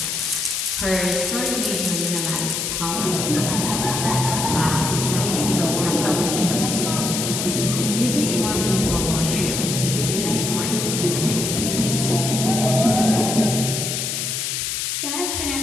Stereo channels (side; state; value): left; noise; hiss, 2 dB below the sound